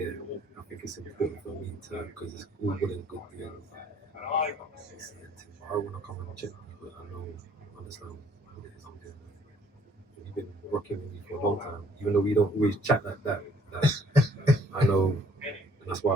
I think it's important for me to, because it's all good and good doing. I want to come and check you, but I understand what it is I'm doing. You've been rocking with me for a long time, even though we don't always chat like that. I know, and that's why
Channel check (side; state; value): both; normal; correlation 0.61